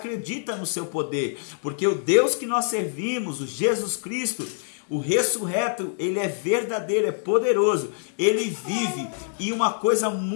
no seu poder. Porque o Deus que nós servimos, o Jesus Cristo, o ressurreto, ele é verdadeiro, é poderoso, ele vive. E uma coisa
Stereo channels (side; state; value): right; silent; 62 dB below the other